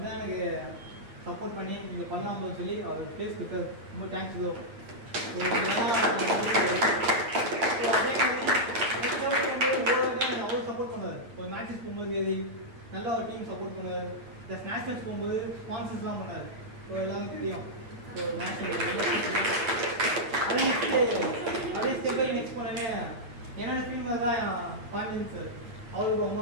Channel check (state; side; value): late; left; 8.6 ms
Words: எனக்கு சப்போர்ட் பண்ணி நீங்கள் பண்ணலாம்னு சொல்லி அவர் ப்ளேஸ் கொடுத்தாரு. ரொம்ப தேங்க்ஸ் ப்ரோ. அவ்வளோ சப்போர்ட் பண்ணுவார். ஒரு மேட்சஸ் போகும்போது நல்லா ஒரு டீம் சப்போர்ட் பண்ணுவார். ப்ளஸ் நேஷனல்ஸ் போகும்போது ஸ்பான்சர்ஸ்லாம் பண்ணார். ஸோ எல்லாருக்கும் தெரியும். ஸோ நேஷனல் அதே ஸ்டெப் பை நெக்ஸ்ட் பண்ணவே என்னோட டீம் தான் பாண்டியன் சார். அவருக்கு அம்மா